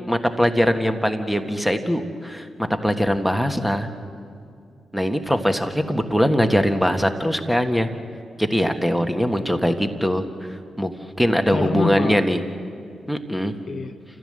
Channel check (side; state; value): both; normal; correlation 0.95